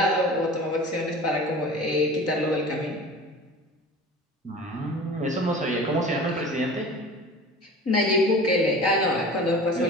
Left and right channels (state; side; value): normal; both; correlation 0.39